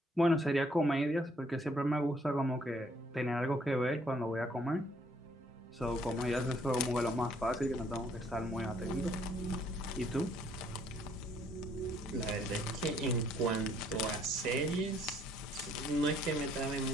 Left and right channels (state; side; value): normal; both; correlation 0.65